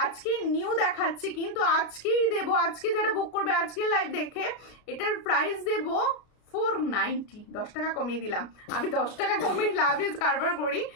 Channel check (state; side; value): late; right; 33 ms